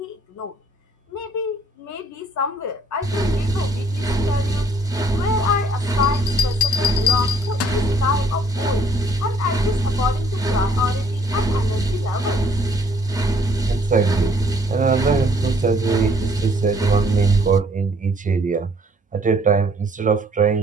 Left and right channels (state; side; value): normal; both; correlation 0.63